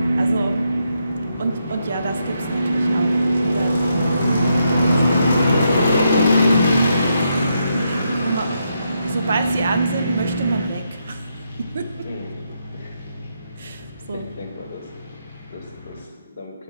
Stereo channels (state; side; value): inverted; both; correlation -0.80